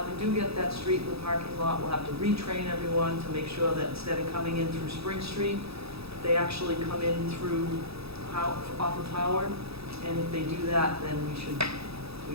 do get that street in the parking lot, we'll have to retrain everyone to make sure that instead of coming in through Spring Street, they actually come in through off of Howard. And if they do that, then we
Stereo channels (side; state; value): left; late; 0.77 ms